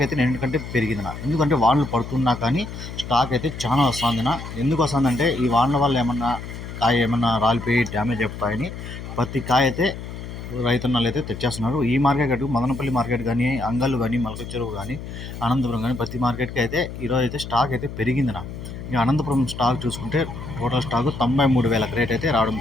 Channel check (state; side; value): noise; left; hum, 10 dB below the sound